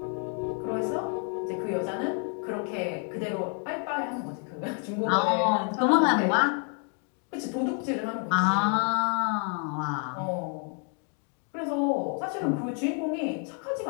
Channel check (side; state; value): right; quieter; 39.0 dB